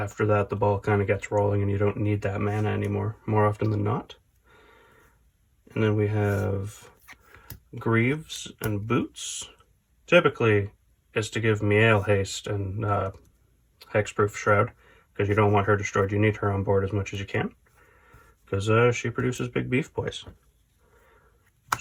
that the ball kind of gets rolling and you don't need that mana anymore, more often than not. And then we have Greaves and Boots. Typically is to give Mayael haste and Hexproof Shroud, because you don't want her destroyed. You need her on board as much as you can, because she produces big beef boys.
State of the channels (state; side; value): identical; both; correlation 1.00